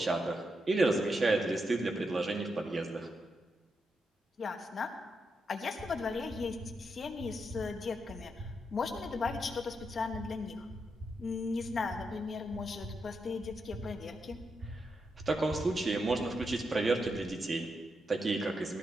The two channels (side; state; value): both; normal; correlation 0.83